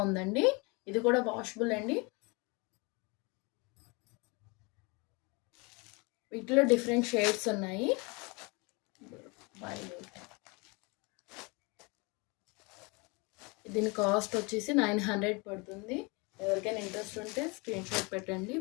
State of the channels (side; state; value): right; quieter; 28.7 dB